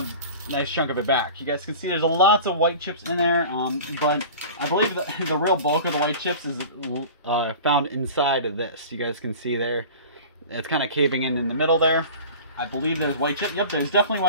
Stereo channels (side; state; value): both; inverted; correlation -0.38